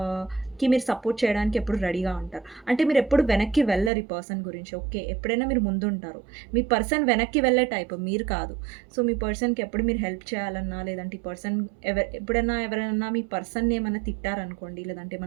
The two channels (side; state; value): left; drops out; at 3.9 s